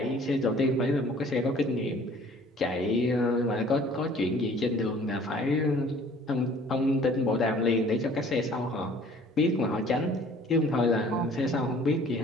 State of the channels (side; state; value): both; normal; correlation 0.53